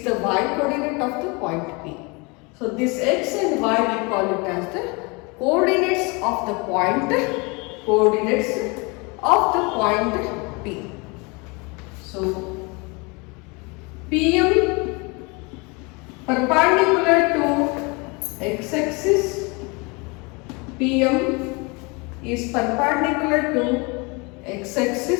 the y coordinate of the point P. So this x and y we call it as the coordinates of the point P. So PM perpendicular to x-axis, PM is perpendicular to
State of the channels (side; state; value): right; quieter; 28.7 dB